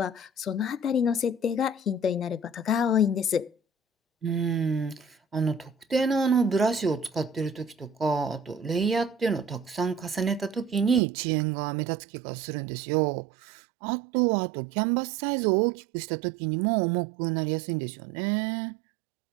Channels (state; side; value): drops out; left; at 11.0 s